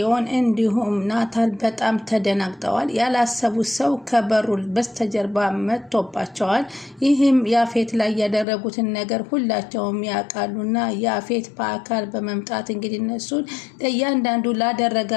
እንዲሁም ናታል በጣም ተደናግጠዋል። ያላሰቡት ሰው ከበሩ በስተጀርባ መጥቶባቸዋል። ይህም ያፌት ላይ ያደረጉትን ነገር ሁላቸውም ያውቃሉና ያፌት በአካል በመምጣት እንግዲህ እነሱን እያንዳንዱ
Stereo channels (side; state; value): right; drops out; at 8.5 s